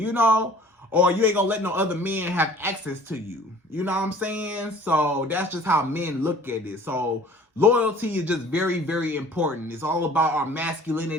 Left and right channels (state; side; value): normal; both; correlation 0.49